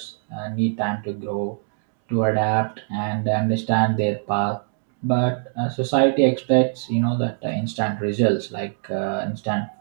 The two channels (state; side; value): silent; left; 63 dB below the other